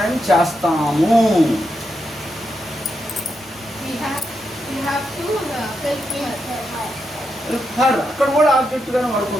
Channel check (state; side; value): normal; both; correlation 0.84